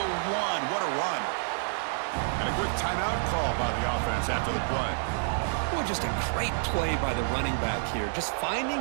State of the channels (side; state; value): left; silent; digital silence